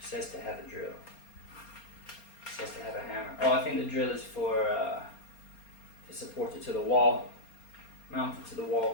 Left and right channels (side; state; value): right; late; 4.3 ms